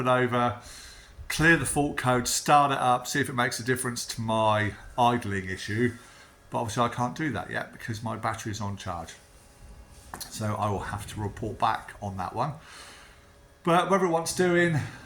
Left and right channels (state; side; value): identical; both; correlation 1.00